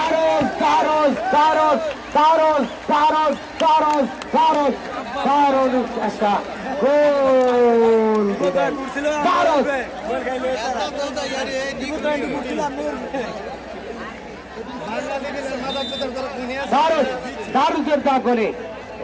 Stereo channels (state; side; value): identical; both; correlation 1.00